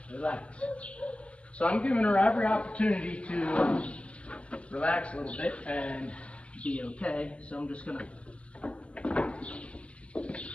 relax. So I'm giving her every opportunity to relax a little bit and be okay, so I'm just going to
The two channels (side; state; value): right; late; 0.061 ms